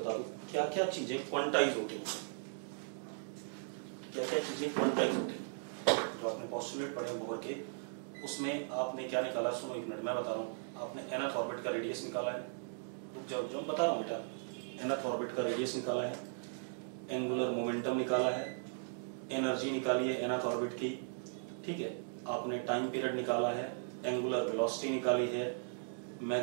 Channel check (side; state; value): left; silent; digital silence